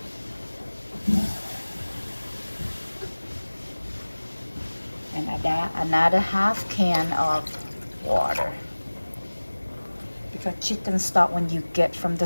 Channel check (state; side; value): inverted; both; correlation -1.00